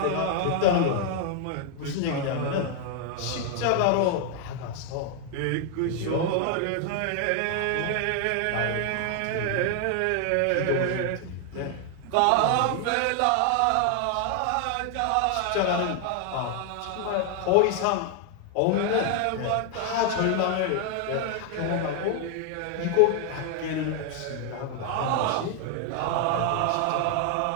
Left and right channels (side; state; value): both; different; correlation 0.00